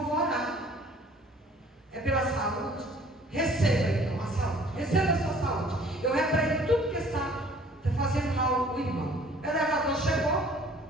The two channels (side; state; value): both; normal; correlation 0.54